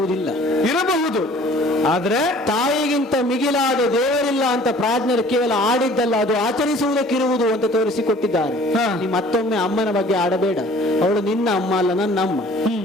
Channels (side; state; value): both; normal; correlation 0.51